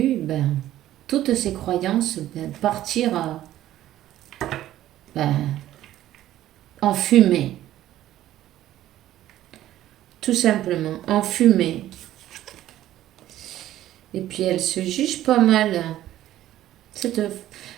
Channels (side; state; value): left; quieter; 13.4 dB